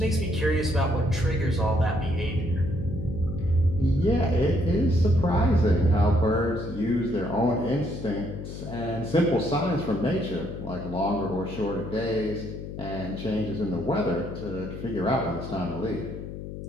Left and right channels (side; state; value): left; noise; hum, 9 dB below the sound